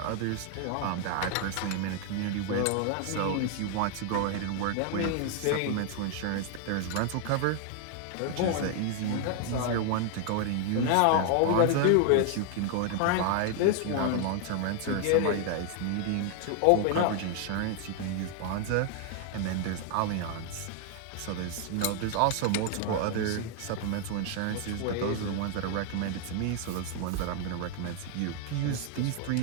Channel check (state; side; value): different; both; correlation 0.00